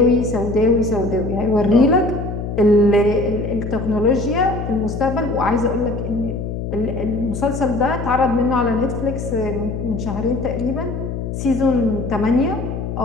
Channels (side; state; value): left; noise; hum, 5 dB below the sound